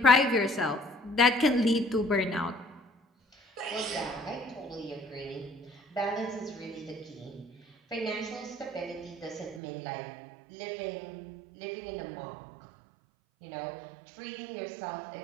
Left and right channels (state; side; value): drops out; left; at 9.6 s